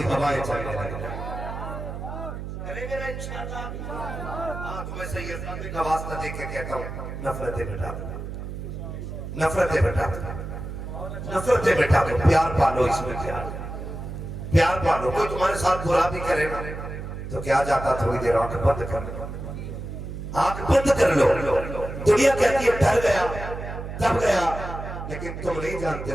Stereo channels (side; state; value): right; noise; hum, 8 dB below the sound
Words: ہوائیں چلنے لگیں. کریں گے نا انشاءاللہ. ہاں تو میں سید صاحب کا واسطہ دے کے کہتا ہوں نفرتیں مٹا دو, نفرتیں مٹا دو, نفرتیں مٹا دو, پیار پالو, اس میں پیار, پیار پالو. کوئی تمہارے ساتھ برا بھی کرے گا تو کیا جاتا تھوڑی دیر آنکھ بند کر لو, آنکھ بند کر لو. دنیا کہتی ہے ڈر گیا تب گیا, لیکن تم نہیں جانتے